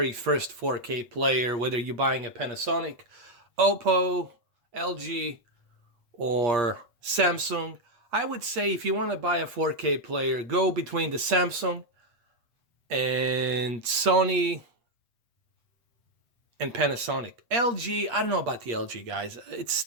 first 4K player, whether you're buying a Panasonic, Oppo, LG, or Samsung? I would say if you want to buy a 4K player, go between the Samsung and Sony and Panasonic. LG, I don't know about the LG, guys. It's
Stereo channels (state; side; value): late; left; 8.5 ms